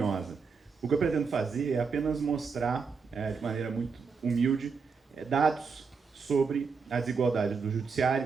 O que eu pretendo fazer é apenas mostrar, de maneira muito humilde, dados sobre a desigualdade do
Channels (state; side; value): quieter; left; 5.3 dB